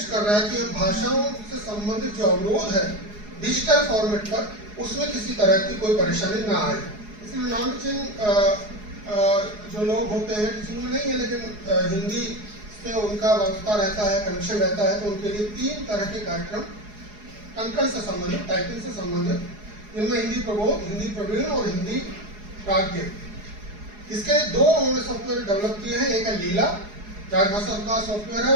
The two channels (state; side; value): late; left; 4.8 ms